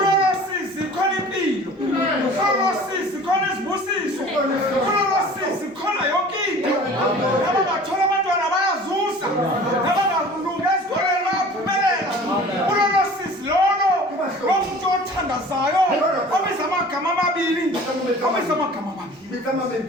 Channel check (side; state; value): both; normal; correlation 0.44